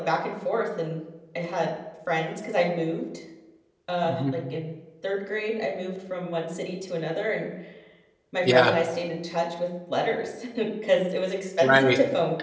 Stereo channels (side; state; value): both; identical; correlation 1.00